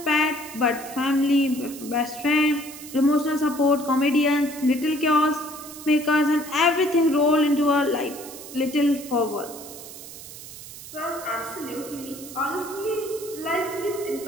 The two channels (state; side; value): noise; right; hiss, 14 dB below the sound